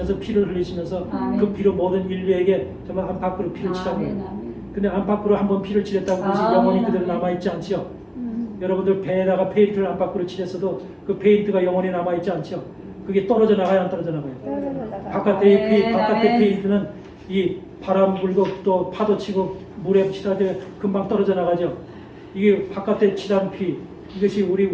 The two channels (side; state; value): both; identical; correlation 1.00